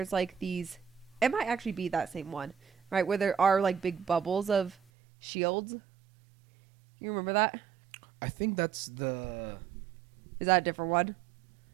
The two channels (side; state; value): left; drops out; at 4.8 s